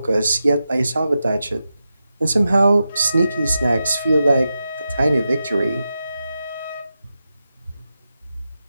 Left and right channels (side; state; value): both; inverted; correlation -0.90